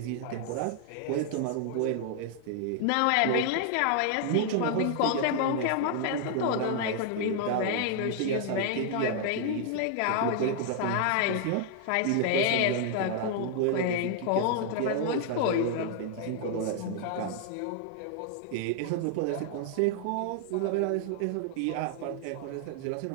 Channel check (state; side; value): different; both; correlation 0.00